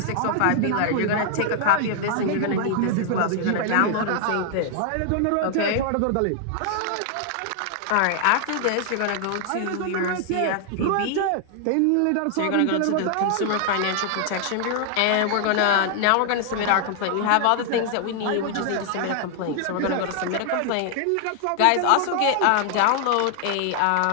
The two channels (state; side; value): different; both; correlation 0.00